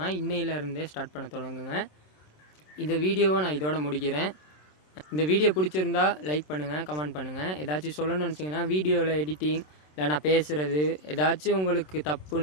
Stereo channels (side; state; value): right; late; 27 ms